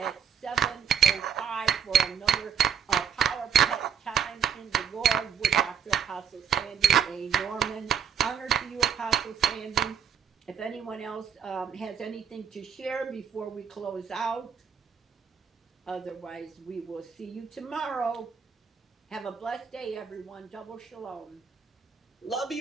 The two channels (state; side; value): quieter; left; 7.8 dB